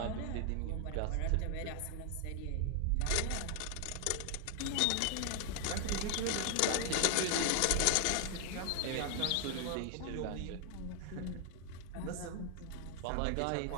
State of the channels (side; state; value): both; different; correlation 0.00